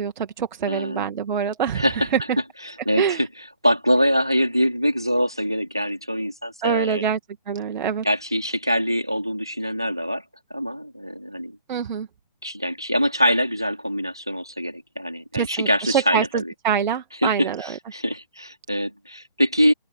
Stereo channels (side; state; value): both; inverted; correlation -0.69